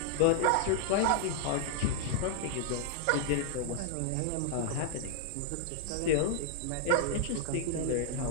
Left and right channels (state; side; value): different; both; correlation 0.00